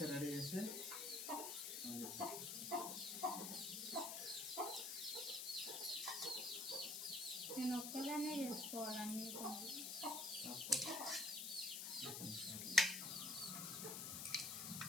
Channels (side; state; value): left; noise; hiss, 3 dB below the sound